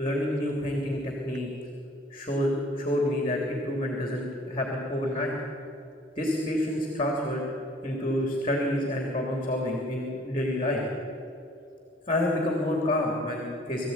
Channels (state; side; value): normal; both; correlation 0.55